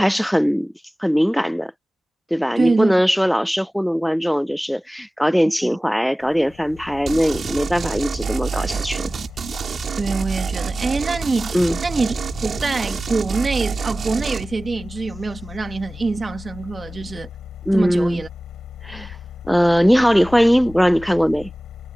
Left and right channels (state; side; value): normal; both; correlation 0.97